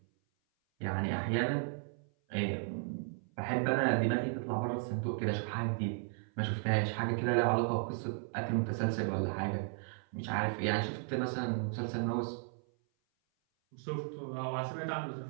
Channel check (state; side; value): silent; left; 54 dB below the other